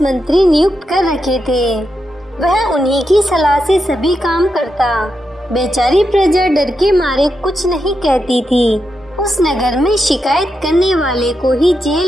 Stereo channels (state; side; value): normal; both; correlation 0.86